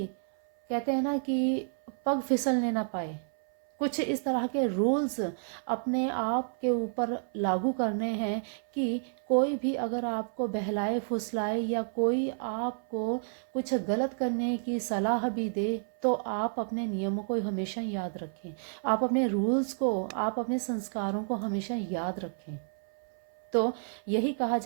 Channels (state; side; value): silent; left; 58 dB below the other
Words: कहते हैं ना कि पग फिसलने ना पाए। कुछ इस तरह के रूल्स अपने आप के ऊपर लागू करने हैं कि कोई भी अगर आपको बहलाए फुसलाए या कोई आपको कुछ गलत करने की सलाह भी दे तो आप अपने नियमों को हमेशा याद रखें, आप अपने रूल्स को, आप अपने संस्कारों को हमेशा याद रखें। तो यही कहा